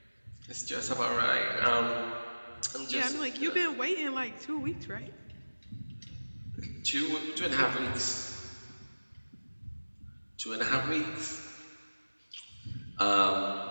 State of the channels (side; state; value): both; inverted; correlation -1.00